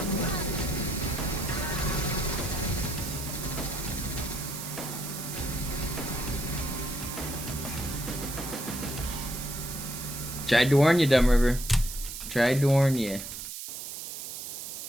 Tried to warn you, Dumb River. Tried to warn you.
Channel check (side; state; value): right; noise; hiss, 8 dB below the sound